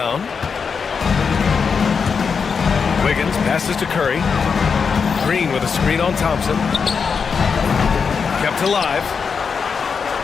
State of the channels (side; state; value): right; quieter; 5.8 dB